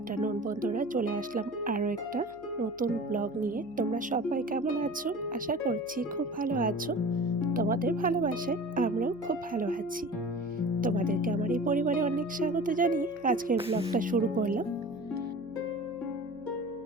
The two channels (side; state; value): right; noise; hum, 28 dB below the sound